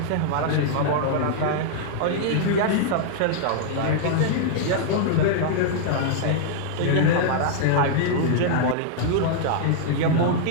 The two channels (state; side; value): different; both; correlation -0.01